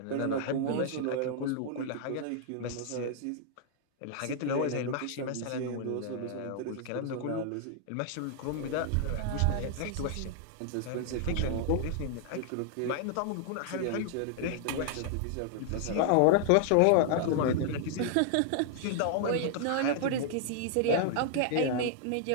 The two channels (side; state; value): both; different; correlation -0.01